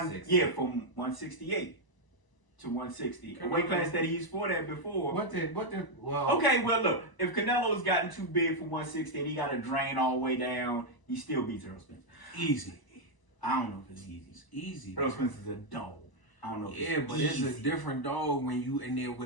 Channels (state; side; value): late; right; 1.0 ms